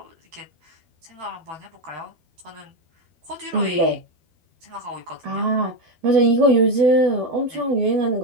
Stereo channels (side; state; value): left; late; 12 ms